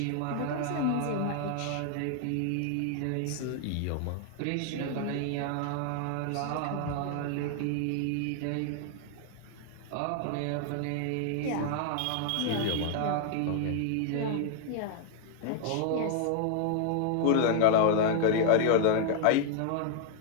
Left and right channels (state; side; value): different; both; correlation 0.00